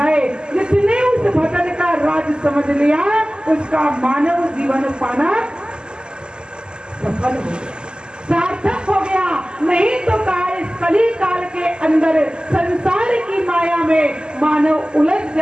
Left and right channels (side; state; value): left; late; 0.047 ms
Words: जिसने उस भजन का राज समझ लिया उसका मानव जीवन पाना सफल हो गया, सार्थक हो गया। नहीं तो इस कली काल के अंदर संसार की माया में मानव उलझ